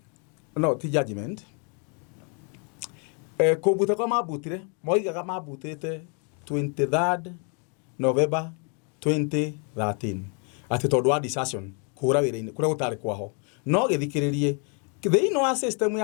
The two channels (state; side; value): quieter; right; 37.7 dB